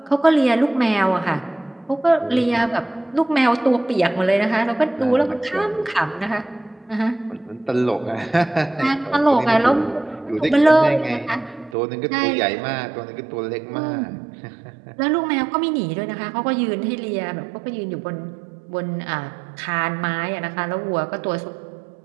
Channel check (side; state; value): left; drops out; at 11.8 s